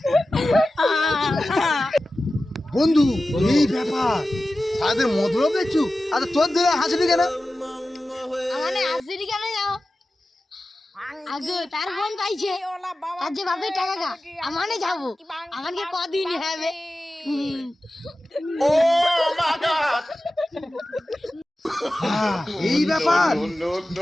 বন্ধু এই ব্যাপার, তাদের মতলব দেখছু। আচ্ছা তোর দিলে হাসিনি কেন? মানে হাসিনি কেন যাও? আগে তার বোন পাইছে, আর যে বাপের টাকা গা আমানে যাবো, আমাকে কদিন হবে। এই ব্যাপার,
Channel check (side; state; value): both; normal; correlation 0.95